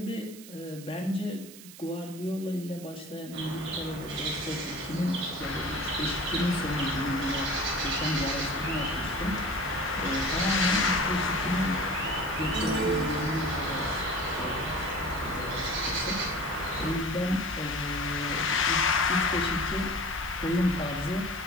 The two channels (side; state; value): right; noise; hiss, 17 dB below the sound